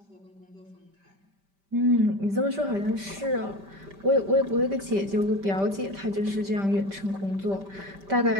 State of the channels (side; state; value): left; late; 5.1 ms